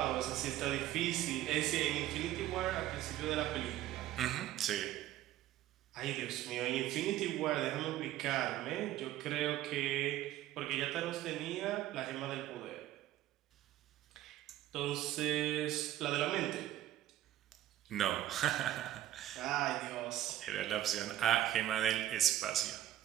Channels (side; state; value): left; quieter; 13.4 dB